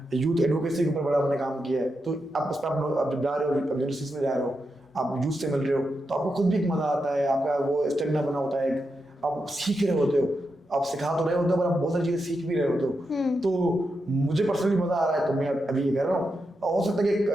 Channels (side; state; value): both; normal; correlation 0.86